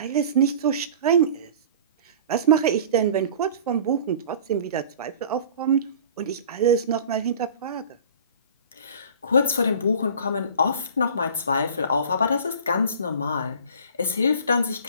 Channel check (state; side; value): inverted; both; correlation -0.42